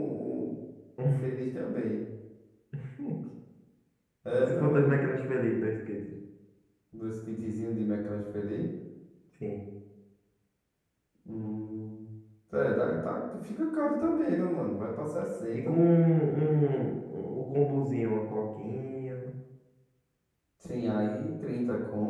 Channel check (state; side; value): identical; both; correlation 1.00